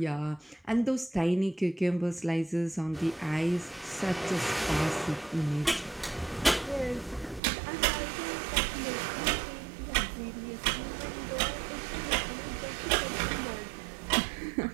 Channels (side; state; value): left; drops out; at 7.4 s